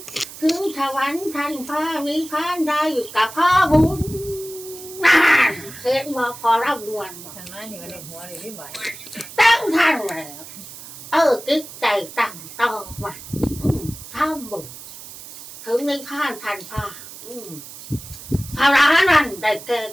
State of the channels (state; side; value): noise; right; hiss, 14 dB below the sound